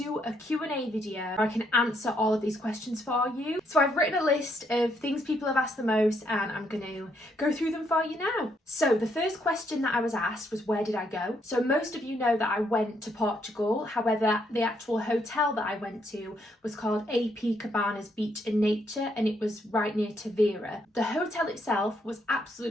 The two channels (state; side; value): normal; both; correlation 0.74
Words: a Q&A video where I can answer all of these questions for you. So I've written a list of things people have asked the most and I'm going to go through them for you now. So the first question that I was asked was, where did I go? So most of you know that I went to Portugal, however the actual hotel that I went to was called AP Cabanas Beach and Nature, and it was right near Tavira. The hotel itself was